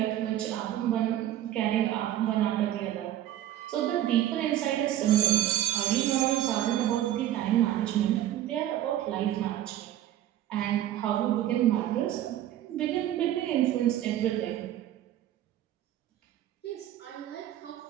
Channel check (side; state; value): left; quieter; 12.5 dB